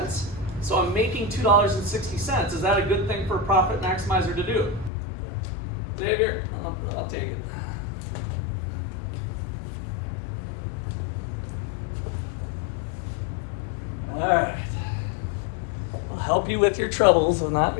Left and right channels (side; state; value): right; drops out; at 4.9 s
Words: So I'm making $2.60. Is that a good thing for a profit maximizer to do? Xavier, I'll take it. All right. I'll help you with your troubles of not